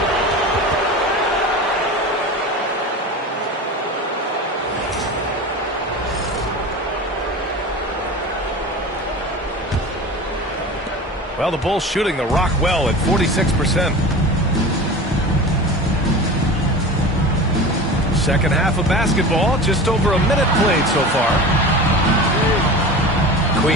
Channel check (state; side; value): normal; both; correlation 0.33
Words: Well, the Bulls shooting the rock well at 46%. Second half of basketball, just over a minute played so far.